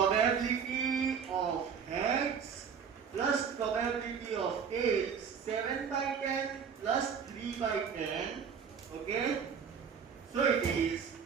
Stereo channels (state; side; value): quieter; left; 6.8 dB